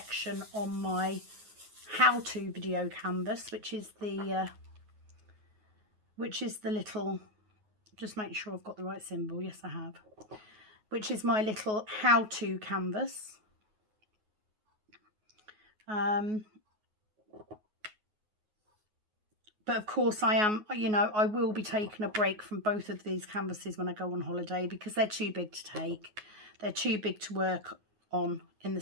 on my how-to video canvas, which is the little, just make sure I've got the right symbol. Yes, I have. Which is my little how-to canvas. But of course I am, you know, I will be taking a break from both of these canvases when I go on holiday, because they're too big to take. They're too big to work on in the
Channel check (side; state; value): left; late; 9.4 ms